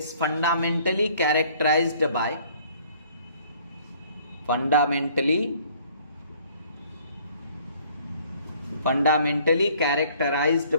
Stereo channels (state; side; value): inverted; both; correlation -0.58